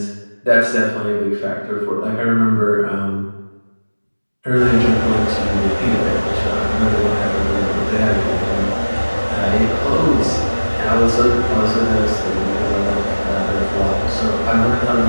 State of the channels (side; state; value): both; inverted; correlation -1.00